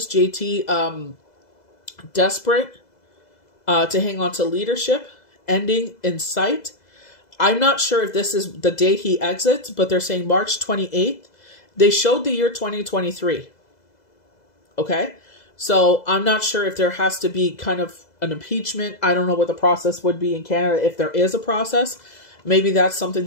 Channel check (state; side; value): late; right; 2.0 ms